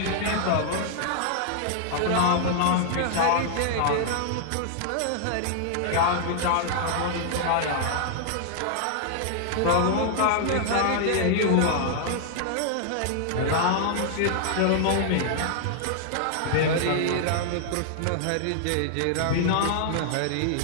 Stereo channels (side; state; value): both; different; correlation 0.00